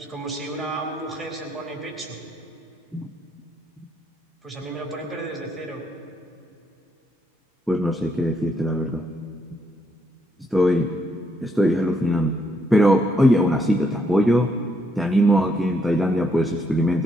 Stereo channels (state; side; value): normal; both; correlation 0.75